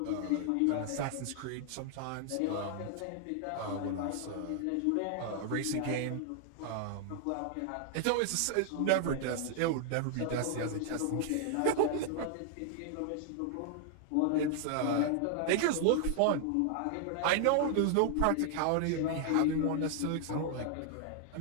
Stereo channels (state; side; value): different; both; correlation 0.00